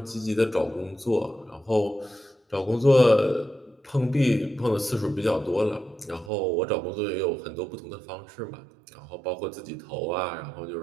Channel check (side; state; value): left; drops out; at 6.3 s